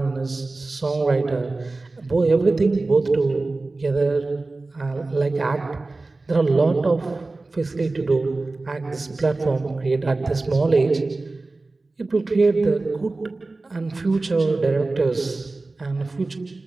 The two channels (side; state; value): left; quieter; 3.3 dB